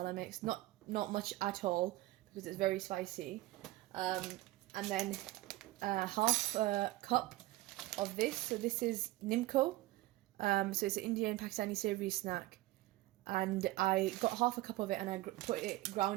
mix, not much at all because it's very spicy, and then half a cup of this. So this is Nimco, so it's an Indian Pakistani savoury snack, and I got half a cup of it and I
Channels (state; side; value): quieter; left; 18.2 dB